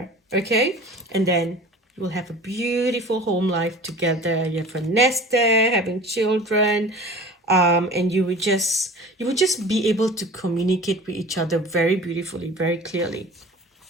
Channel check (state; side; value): normal; both; correlation 0.40